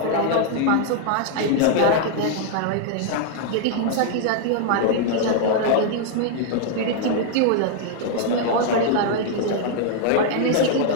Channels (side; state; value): both; different; correlation -0.01